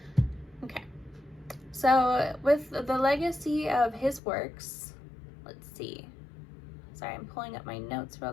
Okay, so with the legacy of his works, let's see, sorry, I'm pulling up my notes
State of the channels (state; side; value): drops out; right; at 4.2 s